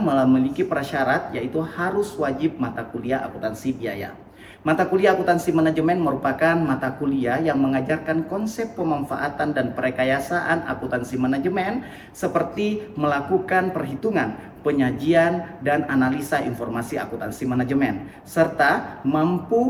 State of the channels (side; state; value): both; identical; correlation 1.00